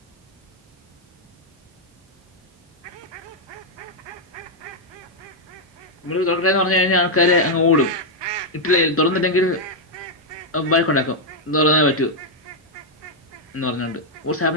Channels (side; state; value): both; normal; correlation -0.01